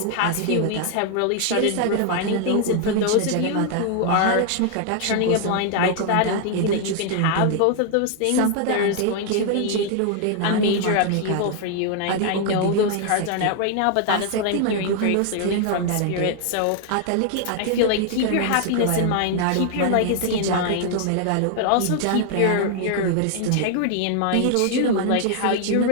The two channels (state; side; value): different; both; correlation 0.00